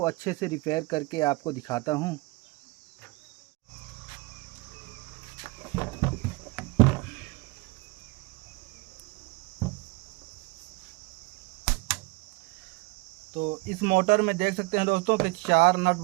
अच्छे से रिपेयर करके आपको दिखाता हूँ। तो इस मोटर में देख सकते हैं दोस्तों कि 4 नट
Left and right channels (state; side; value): quieter; left; 25.2 dB